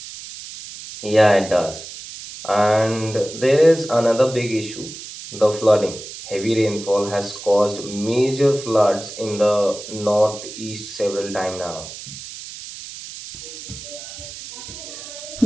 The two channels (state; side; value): noise; right; hiss, 12 dB below the sound